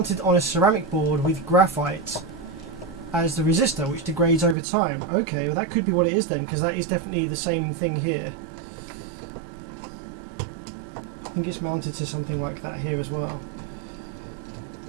on a ceramic board with graphite as the resistor, which degrades over time. Okay, well that could be what it is then, because that is definitely the same thing here. I think it's mounted to something like that here as well.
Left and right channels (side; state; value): left; drops out; at 4.5 s